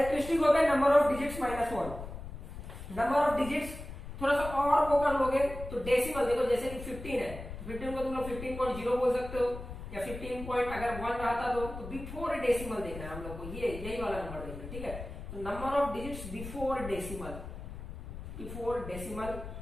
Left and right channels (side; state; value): left; noise; rumble, 10 dB below the sound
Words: हो गया number of digits -1। Number of digits थोड़ा सा और वो कर लोगे तो डेसिमल, देखो जैसे कि 15 है, 15 को तुम लोग 15.0 बोल सकते हो, या 15 पॉइंट अगर 1 रहता तो बिफोर डेसिमल देखना है हम लोग को, ये यही वाला नंबर देखना है, ठीक है। तो number of digits before decimal